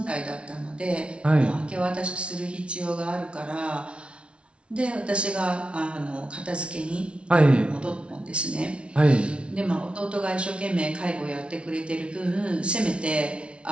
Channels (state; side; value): late; left; 0.059 ms